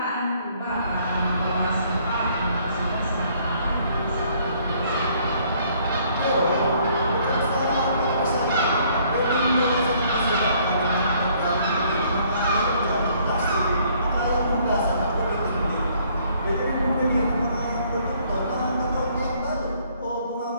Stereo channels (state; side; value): inverted; both; correlation -0.63